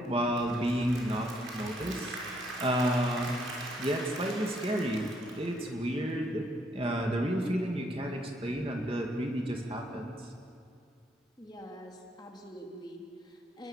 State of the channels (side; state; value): both; normal; correlation 0.71